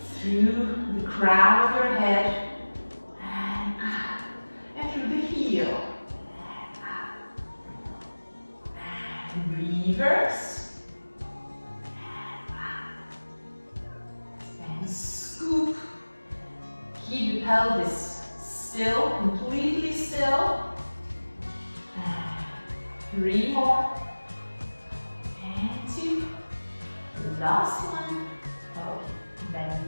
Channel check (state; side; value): inverted; both; correlation -1.00